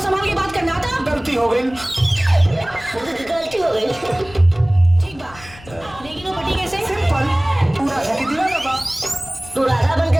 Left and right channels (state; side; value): noise; left; rumble, 21 dB below the sound